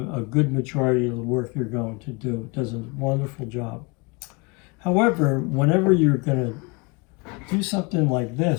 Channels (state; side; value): quieter; right; 28.7 dB